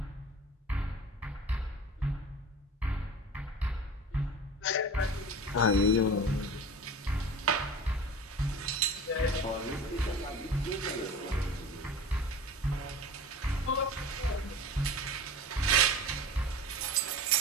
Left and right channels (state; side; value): normal; both; correlation 0.35